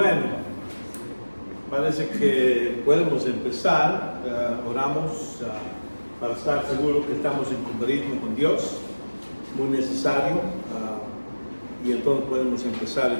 parece que podemos empezar. Oramos para estar seguros que estamos en compañía con Dios, muy necesario, y entonces podemos empezar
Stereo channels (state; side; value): inverted; both; correlation -1.00